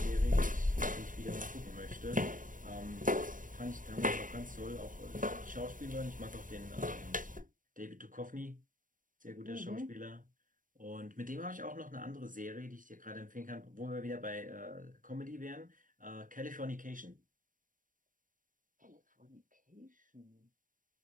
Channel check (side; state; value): left; late; 0.39 ms